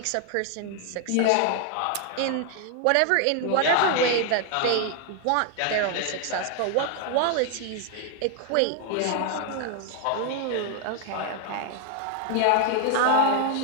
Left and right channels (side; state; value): both; different; correlation 0.00